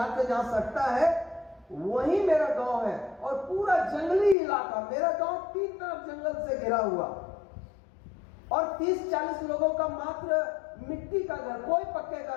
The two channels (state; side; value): drops out; right; at 4.4 s